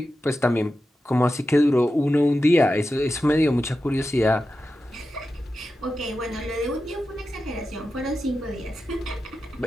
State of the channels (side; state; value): both; normal; correlation 0.91